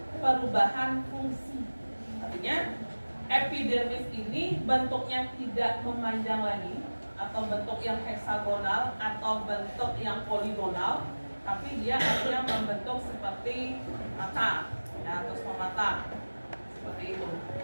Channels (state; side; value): inverted; both; correlation -1.00